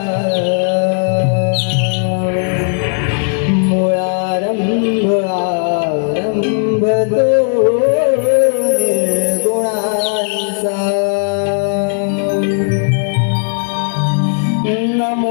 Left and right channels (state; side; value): silent; right; digital silence